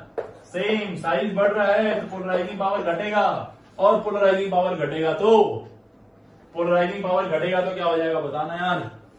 सेम साइज बढ़ रहा है तो पोलराइजिंग पावर घटेगा, और पोलराइजिंग पावर घटेगा तो क्या हो जाएगा, बताना यार।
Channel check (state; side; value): identical; both; correlation 1.00